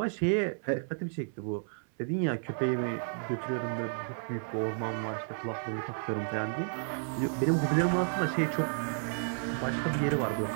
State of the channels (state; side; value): silent; left; 56 dB below the other